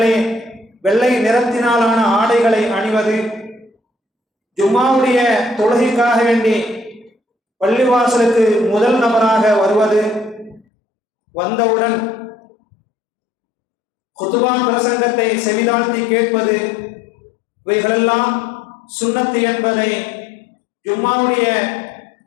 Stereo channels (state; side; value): drops out; right; at 10.7 s